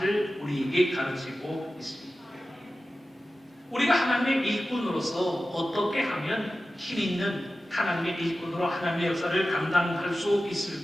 우리에게 가르치고 있습니다. 우리가 하나님의 일꾼으로서 어떻게 하면 힘 있는 하나님의 일꾼으로 하나님의 역사를 감당할 수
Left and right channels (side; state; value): both; normal; correlation 0.94